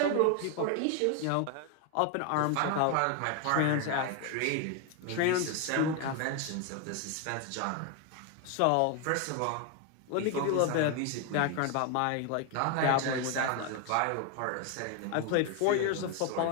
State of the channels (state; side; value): different; both; correlation 0.01